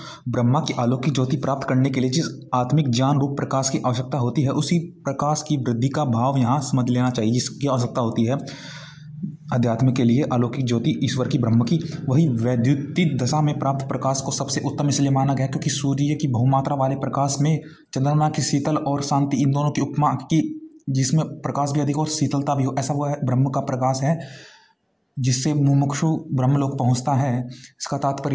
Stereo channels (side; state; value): both; identical; correlation 1.00